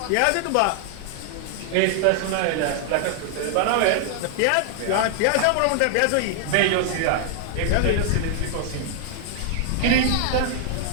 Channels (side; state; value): both; different; correlation 0.00